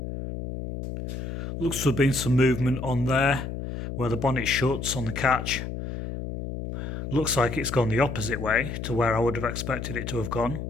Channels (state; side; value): noise; left; hum, 6 dB below the sound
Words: Looks to have been some movement on there where the bonnet shuts on the catch. Looks like it's gone the opposite way to where I would have expected it to have gone.